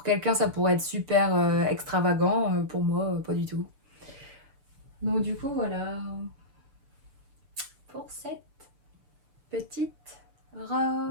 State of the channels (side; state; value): left; late; 6.8 ms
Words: quelqu'un, ça pourrait être super extravagant. Pour moi, pas du tout. Donc, du coup, voilà. Pour cette petite